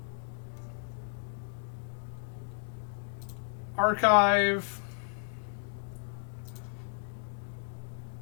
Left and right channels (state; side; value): silent; right; digital silence